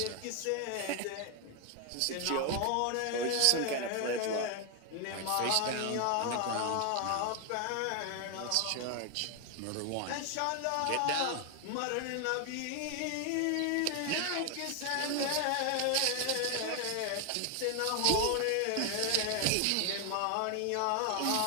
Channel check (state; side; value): different; both; correlation 0.00